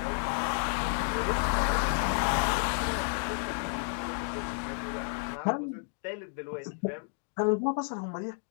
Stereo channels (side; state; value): right; silent; 57 dB below the other